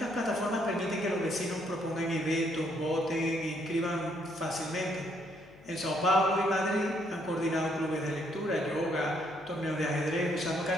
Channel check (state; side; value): noise; left; hum, 25 dB below the sound